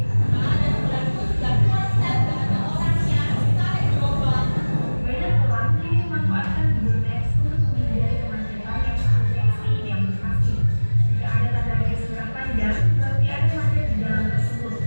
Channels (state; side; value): inverted; both; correlation -1.00